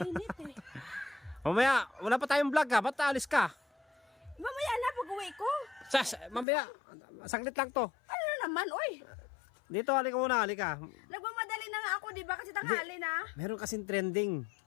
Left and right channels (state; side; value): drops out; right; at 6.5 s